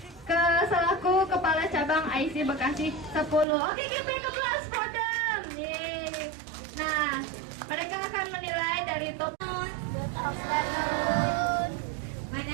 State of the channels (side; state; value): left; drops out; at 3.5 s